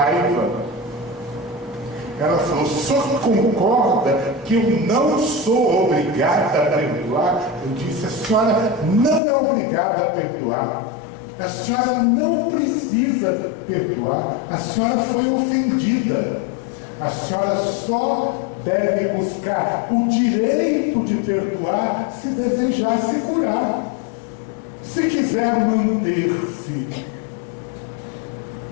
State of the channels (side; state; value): right; drops out; at 9.2 s